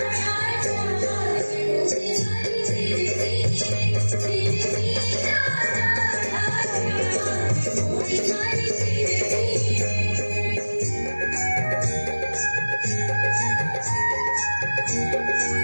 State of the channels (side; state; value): both; inverted; correlation -1.00